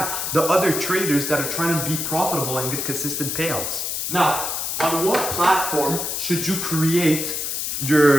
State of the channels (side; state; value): left; noise; hiss, 2 dB below the sound